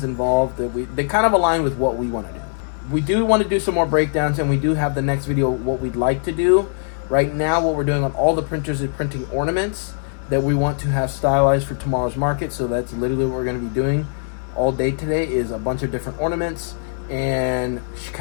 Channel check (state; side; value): silent; right; digital silence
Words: involved that they kind of align with what we want to do. We do want to do some more breakdowns, and we do have the next video what we'd like to do. Right now what we're doing on all the printers is printing ornaments that we want to have stylized for tomorrow's market. So that's literally what we're going to be doing all day today, is a bunch of different ornaments and